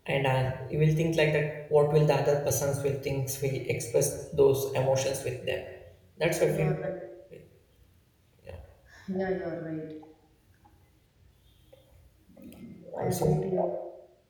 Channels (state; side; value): identical; both; correlation 1.00